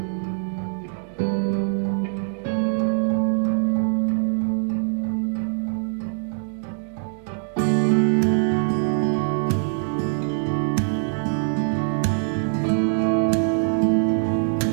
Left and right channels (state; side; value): silent; left; digital silence